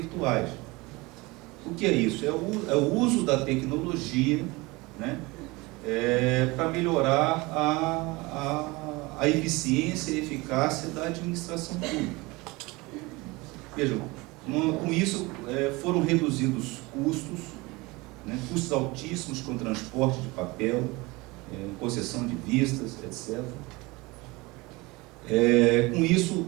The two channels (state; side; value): quieter; left; 23.4 dB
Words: O que é isso? É o uso da tecnologia, né, para melhorar a eficiência e eficácia da administração pública. Vejam, com isso foram reduzidos custos, né, custos altíssimos com transporte de papel, concessão de vistas, etc. Com isso,